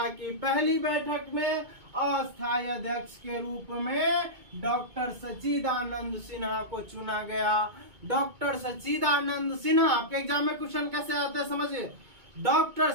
की पहली बैठक में अस्थायी अध्यक्ष के रूप में डॉक्टर सच्चिदानंद सिन्हा को चुना गया। डॉक्टर सच्चिदानंद सिन्हा, आपके एग्जाम में क्वेश्चन कैसे आते हैं समझिए। डॉक्टर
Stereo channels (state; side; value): late; left; 2.2 ms